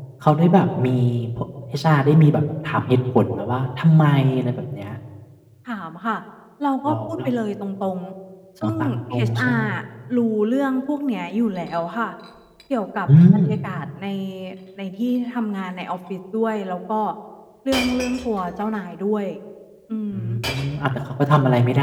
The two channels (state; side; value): identical; both; correlation 1.00